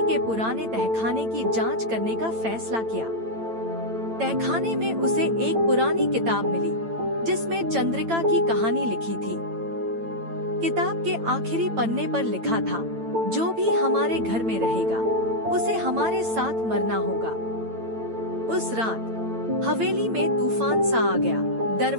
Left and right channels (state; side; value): late; left; 8.9 ms